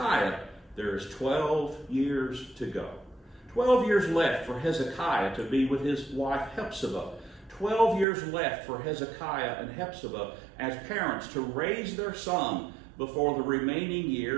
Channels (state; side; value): drops out; left; at 8.1 s